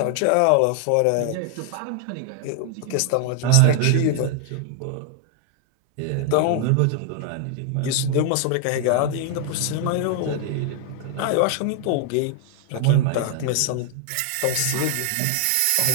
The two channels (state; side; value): different; both; correlation 0.00